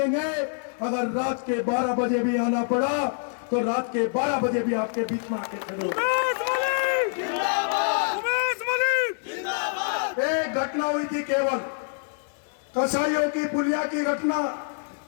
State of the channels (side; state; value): right; silent; digital silence